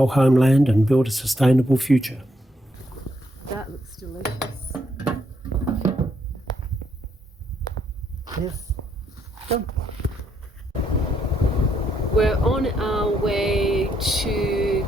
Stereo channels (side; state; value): both; normal; correlation 0.75